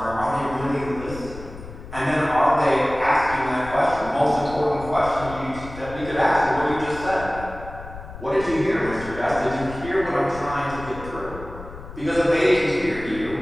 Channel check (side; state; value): left; noise; rumble, 13 dB below the sound